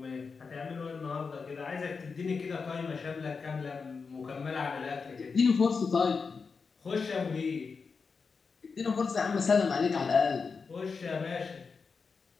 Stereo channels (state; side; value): quieter; right; 5.1 dB